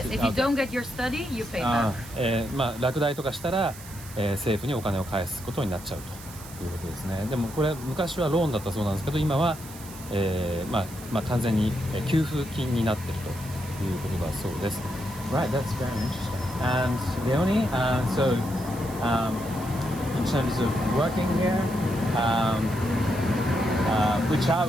if you don't get your study, you pay back. 落第とかしたら、政府にお金を返すことになっちゃうということですね。でもこれ昔はローンだったそうなんですけど、今は、完全に給付金になっているということだそうです。Right, that's very interesting. And Leonie, so in terms of working here, which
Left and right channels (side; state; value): right; noise; hiss, 16 dB below the sound